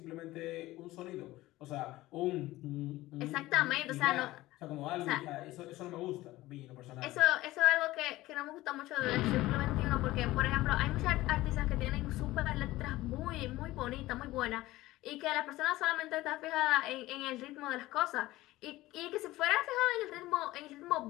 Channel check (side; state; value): right; quieter; 17.6 dB